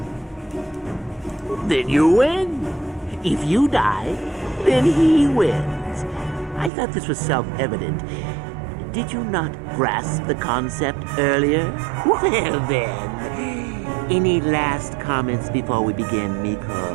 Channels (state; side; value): drops out; left; at 6.7 s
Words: Then you win. If you die, then he wins. I thought this was self-evident. Did you not grasp the concept earlier? Well then, any last comments before we begin,